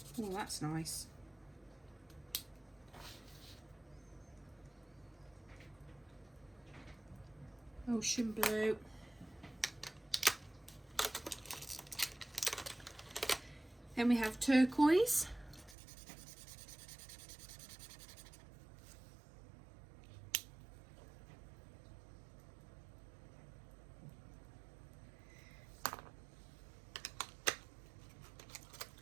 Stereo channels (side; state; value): left; drops out; at 15.8 s